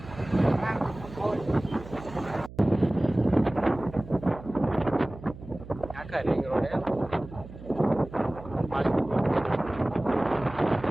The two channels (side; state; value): right; noise; hum, 15 dB below the sound